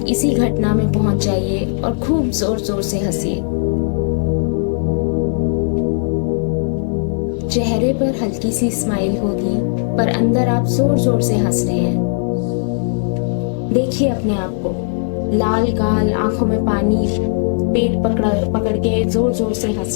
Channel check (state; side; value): silent; right; 58 dB below the other